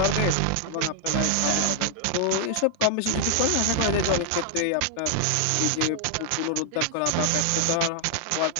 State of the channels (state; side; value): different; both; correlation 0.00